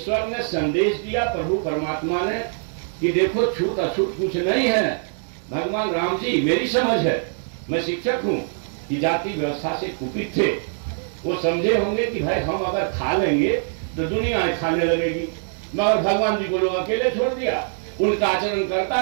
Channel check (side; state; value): left; silent; digital silence